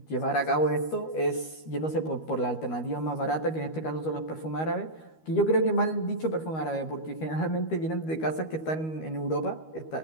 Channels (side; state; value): right; late; 13 ms